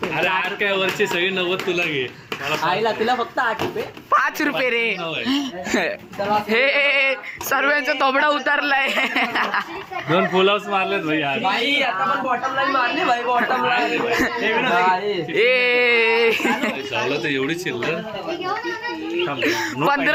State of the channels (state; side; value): identical; both; correlation 1.00